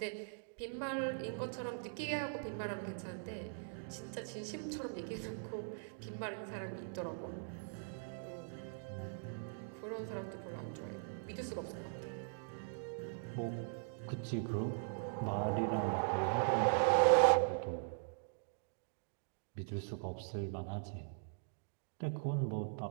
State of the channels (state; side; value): silent; left; digital silence